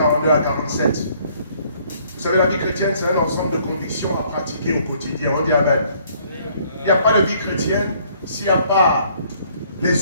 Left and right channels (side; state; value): both; inverted; correlation -0.62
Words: à 47. Vous savez, la vie chrétienne, c'est un ensemble de convictions à pratiquer au quotidien. On dit Amen. Il n'y a pas de vie chrétienne s'il n'y a pas